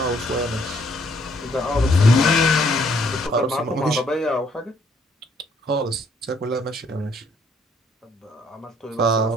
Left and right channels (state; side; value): normal; both; correlation 0.67